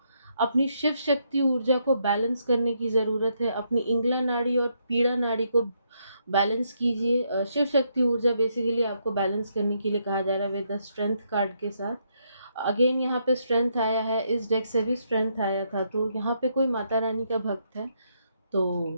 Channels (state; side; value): inverted; both; correlation -0.76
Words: अपनी शिव शक्ति ऊर्जा को बैलेंस करने की ज़रूरत है। अपनी इंगला नाड़ी और पीड़ा नाड़ी को बैलेंस कीजिए। शिव शक्ति ऊर्जा बेसिकली आपको बैलेंस करने के लिए कहा जा रहा है विद द स्ट्रेंथ कार्ड के साथ। अगेन यहाँ पे स्ट्रेंथ आया है, इस डेक से भी स्ट्रेंथ आया था। तो यहाँ पे कोई माता रानी का भक्त है,